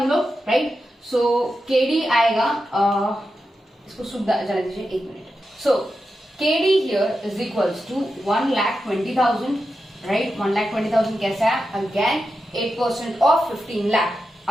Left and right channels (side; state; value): both; normal; correlation 0.89